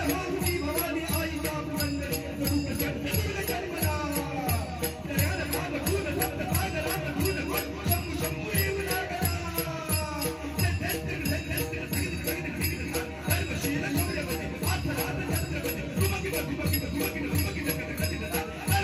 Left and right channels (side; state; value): both; identical; correlation 1.00